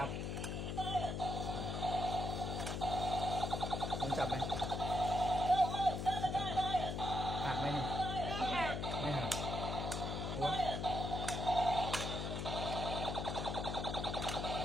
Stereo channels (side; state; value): left; noise; hum, 2 dB below the sound